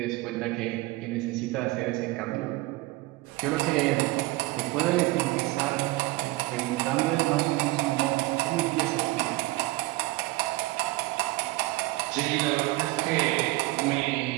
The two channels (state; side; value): quieter; left; 20.7 dB